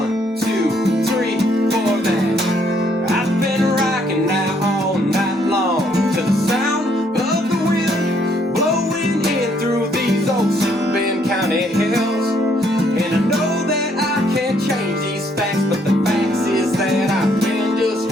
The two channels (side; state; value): both; normal; correlation 0.69